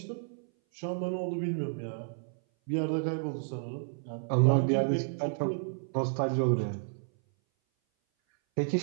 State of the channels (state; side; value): silent; left; 57 dB below the other